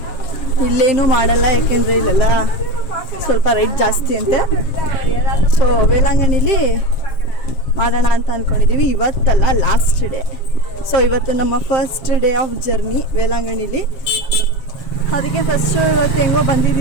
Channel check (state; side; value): late; right; 7.4 ms